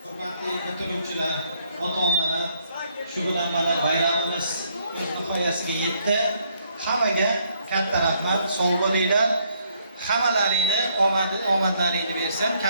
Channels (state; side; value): inverted; both; correlation -0.70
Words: Hurmatli bitiruvchilar, ota-onalar, shu bilan mana bayramimiz o'z nihoyasiga yetdi. Hammaga katta rahmat, sog' bo'linglar. Hammalaringni omadlaringni bersam